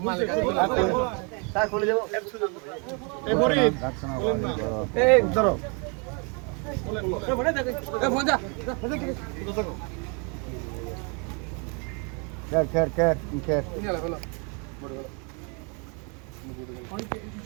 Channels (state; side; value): quieter; left; 34.9 dB